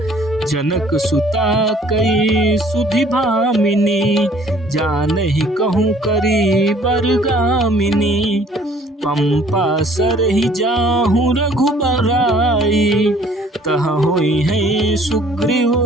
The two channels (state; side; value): normal; both; correlation 0.56